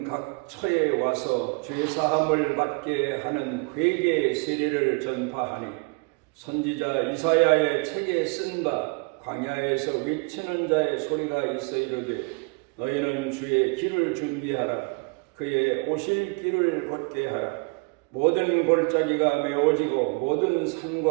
각 처에 와서 죄사함을 받게 하는 회개 세례를 전파하니 선지자 이사야의 책에 쓴 바 광야에서 외치는 자의 소리가 있어 이르되 너희는 주의 길을 준비하라. 그의 오실 길을 곧게 하라. 모든 골짜기가 메워지고 모든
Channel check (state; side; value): quieter; left; 32.4 dB